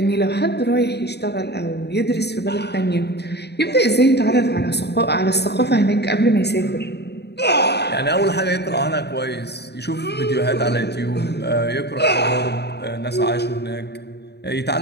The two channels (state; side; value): late; right; 0.48 ms